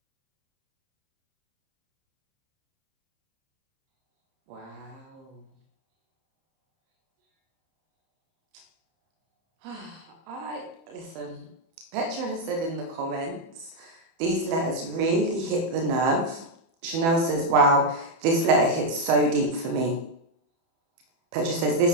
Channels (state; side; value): late; left; 30 ms